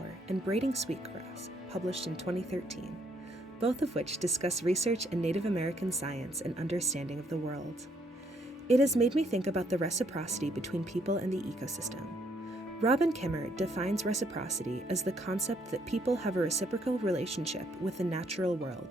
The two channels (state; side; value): normal; both; correlation 0.69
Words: and Braiding Sweetgrass, published in 2013, both of which discuss research in Native American science and understanding of the world. It has made me think about the reciprocity between people and the ecosystem. Robin Kimmer defines reciprocity as the concept that people have a reciprocal relationship with the natural